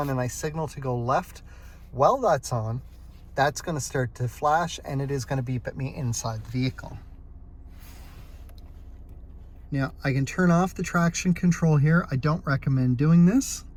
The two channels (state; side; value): identical; both; correlation 1.00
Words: and I signal to go left while that's on, that's going to start to flash and it is going to beep at me inside the vehicle. Now, I can turn off the traction control here. I don't recommend doing this.